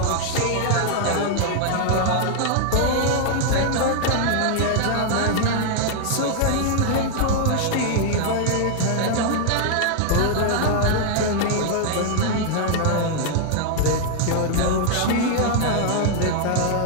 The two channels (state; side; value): different; both; correlation 0.00